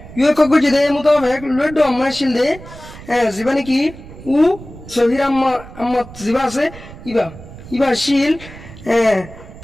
ইউএ কগু জেদে মোতাবেক লড আম্মা আসিল দে জীবনে কি উ সহির আম্মা জিবা আছে ইবা শিল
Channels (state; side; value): noise; right; rumble, 16 dB below the sound